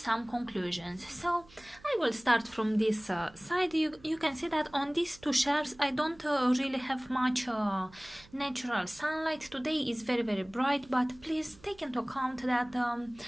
conclusions. So I will start from this side. You can see that on these two shelves I don't really have much natural sunlight. Today is very bright, but please take into account that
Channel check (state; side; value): noise; right; hum, 25 dB below the sound